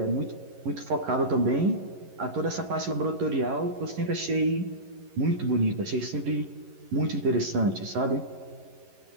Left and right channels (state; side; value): late; left; 11 ms